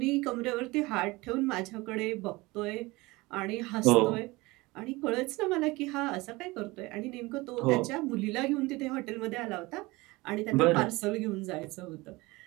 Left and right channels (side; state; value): left; quieter; 22.2 dB